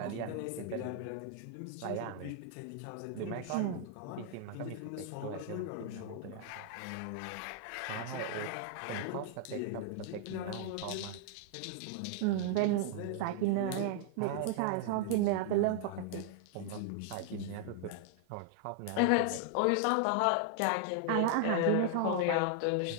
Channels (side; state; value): both; different; correlation 0.00